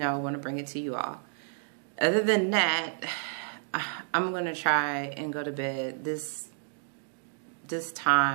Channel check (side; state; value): left; silent; digital silence